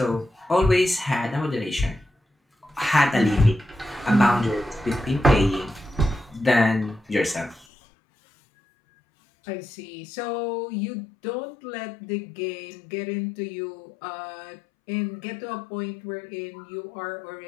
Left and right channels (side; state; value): right; drops out; at 7.7 s